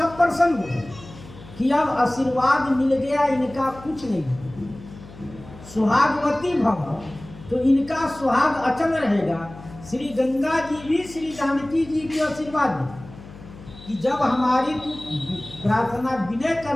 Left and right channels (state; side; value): noise; left; hum, 18 dB below the sound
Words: प्रसन्न हो गए कि अब आशीर्वाद मिल गया, इनका कुछ नहीं। सुहागवती भव, तो इनका सुहाग अचल रहेगा। श्री गंगा जी भी श्री जानकी जी को आशीर्वाद दी कि जब हमारी तू प्रार्थना विनय कर